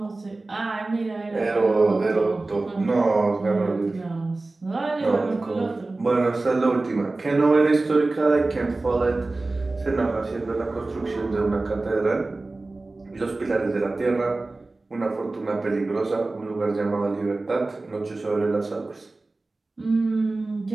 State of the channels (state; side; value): quieter; left; 3.2 dB